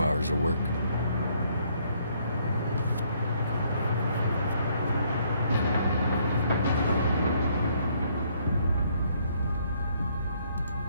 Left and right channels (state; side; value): inverted; both; correlation -0.68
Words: hours of work.